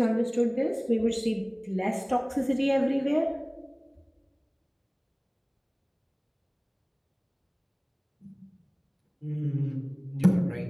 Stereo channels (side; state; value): both; identical; correlation 1.00